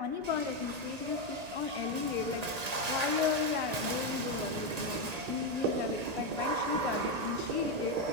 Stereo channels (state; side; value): late; left; 1.8 ms